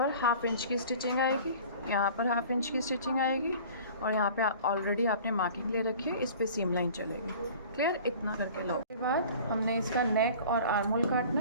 हाफ इंच की स्टिचिंग आएगी, यहाँ पर हाफ इंच की स्टिचिंग आएगी, और यहाँ पे ऑलरेडी आपने मार्किंग ले रखी है, इस पे सीम लाइन चलेगी। क्लियर? इतना करके लो। उसके बाद हमने इसका नेक और आर्म होल काटना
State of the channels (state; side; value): inverted; both; correlation -0.44